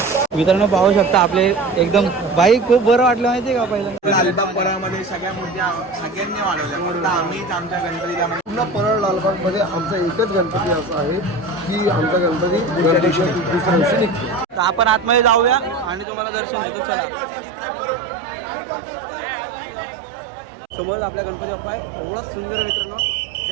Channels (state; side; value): drops out; left; at 16.1 s